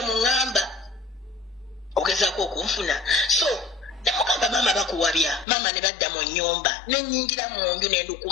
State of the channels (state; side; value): drops out; right; at 5.5 s